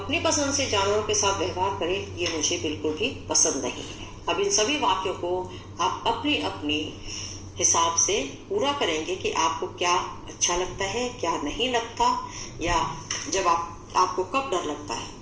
पसंद से जानवरों के साथ व्यवहार करे, ये मुझे बिल्कुल भी पसंद नहीं है। अब इन सभी वाक्यों को आप अपनी अपनी हिसाब से पूरा करेंगे कि आपको क्या अच्छा लगता है, क्या नहीं लगता, या जब आपको कब डर लगता है।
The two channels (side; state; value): both; identical; correlation 1.00